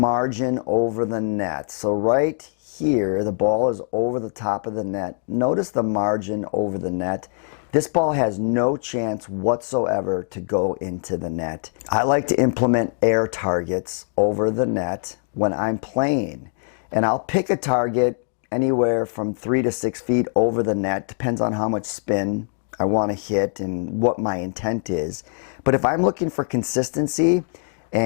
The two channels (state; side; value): silent; right; 63 dB below the other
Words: over the net. So right here, the ball is over the top of the net. Notice the margin over the net. This ball has no chance whatsoever to go into the net. I like to implement air targets over the net when I'm playing. And I'll pick a target anywhere from 3 to 6 feet over the net. Depends on how much spin I want to hit and what my intent is. But if I'm looking for consistency